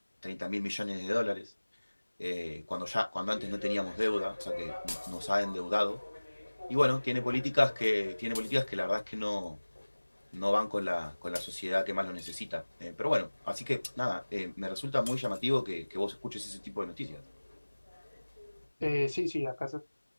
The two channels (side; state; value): both; inverted; correlation -1.00